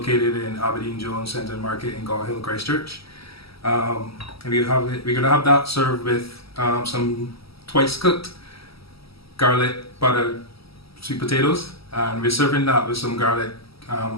in Aberdeen Jones Centre Market in Gaw Hill, Christchurch. And we're going to have that served with some twice cooked garlic butter sweet potatoes, and we're serving that with some garlic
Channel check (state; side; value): late; right; 0.76 ms